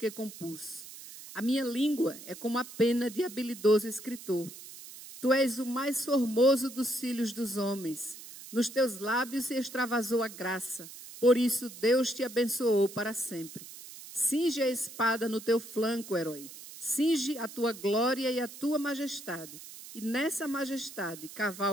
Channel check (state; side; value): noise; right; hiss, 15 dB below the sound